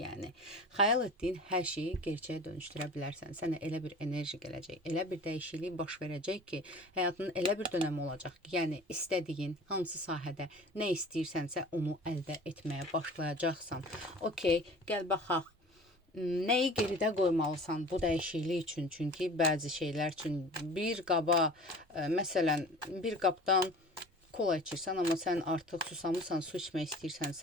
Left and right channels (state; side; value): normal; both; correlation 0.41